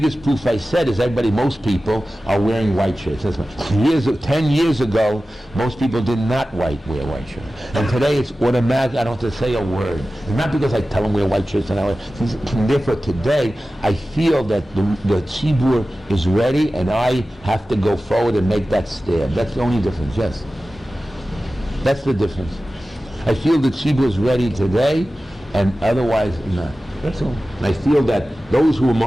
proof I said is most people are wearing white shirts. 10 years ago, most people did not wear white shirts. And today it's automatic, I don't have to say a word. It's not because I tell them wear white shirts, and therefore today I feel that the tzibur is ready, and I have to go forward and make that step. That's the only difference, yes. That's the difference. I feel the tzibur is ready today, and otherwise not. That's all. And I feel that those who are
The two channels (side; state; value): both; normal; correlation 0.95